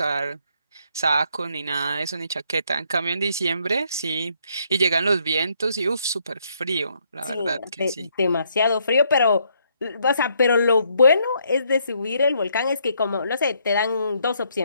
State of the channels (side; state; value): both; inverted; correlation -0.71